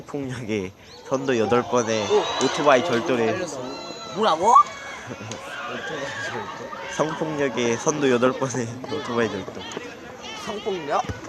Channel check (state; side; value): identical; both; correlation 1.00